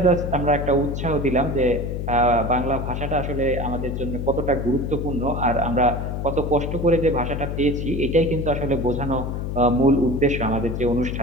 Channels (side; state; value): left; noise; hum, 3 dB below the sound